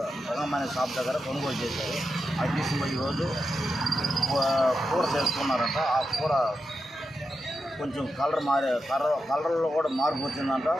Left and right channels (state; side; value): normal; both; correlation 0.88